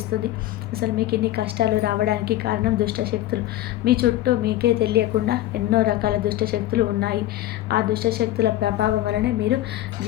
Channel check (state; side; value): quieter; right; 14.6 dB